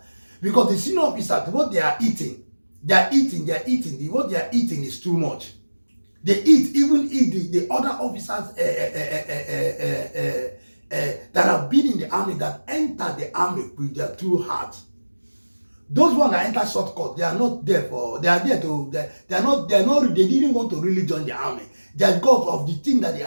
Because the senior officers, what they are eating, what they are eating is too much. They even eat the other officers that have been in the army, that enter the army with their true heart. Those ones that enter shortcut, they are not there for, they didn't want to really join the army. They are because of the thing that they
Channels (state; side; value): inverted; both; correlation -1.00